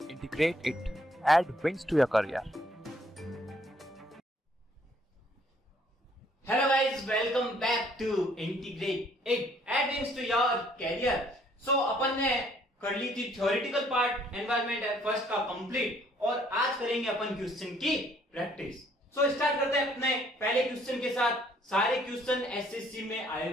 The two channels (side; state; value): both; normal; correlation 0.63